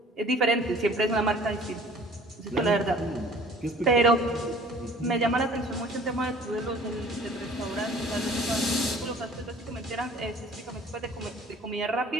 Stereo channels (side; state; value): both; normal; correlation 0.50